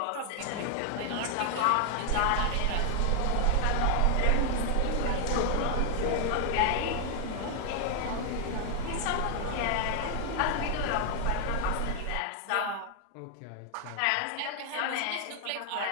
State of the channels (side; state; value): both; different; correlation 0.00